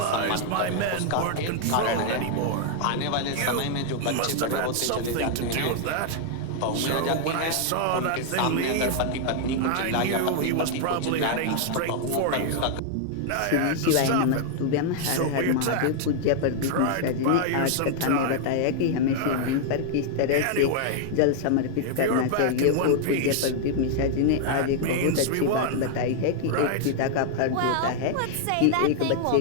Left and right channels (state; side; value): different; both; correlation 0.00